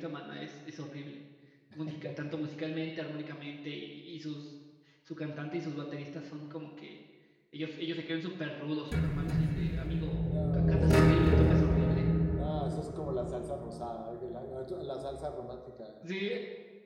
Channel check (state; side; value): identical; both; correlation 1.00